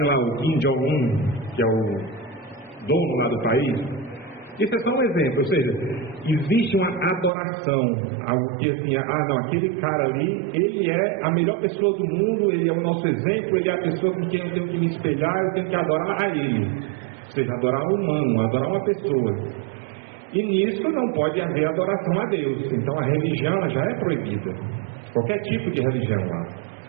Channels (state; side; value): drops out; left; at 7.3 s